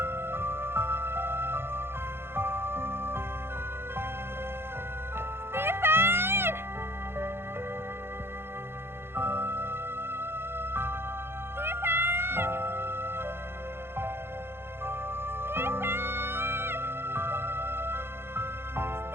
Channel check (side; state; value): left; late; 0.11 ms